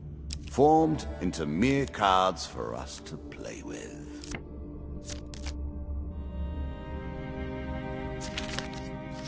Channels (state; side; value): identical; both; correlation 1.00